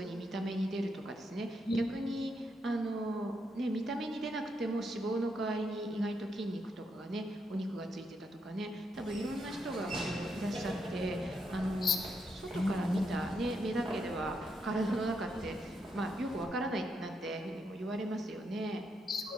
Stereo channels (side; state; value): both; normal; correlation 0.80